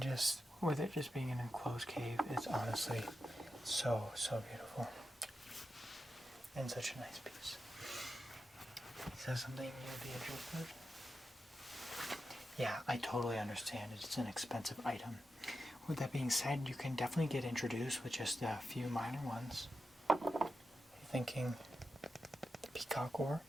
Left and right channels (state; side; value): normal; both; correlation 0.90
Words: just with it just being an enclosed cave, it's honestly so, so beautiful. And such a nice piece. Is that something you'd be interested? Yeah, I totally understand. It's an expensive item. With that being said, you can definitely get introduced with just a few minor ones. You're thinking the peacock ore?